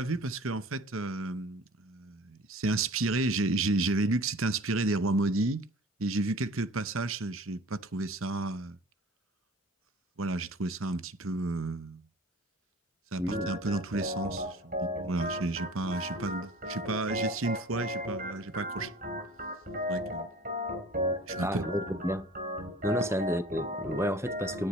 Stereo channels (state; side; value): normal; both; correlation 0.45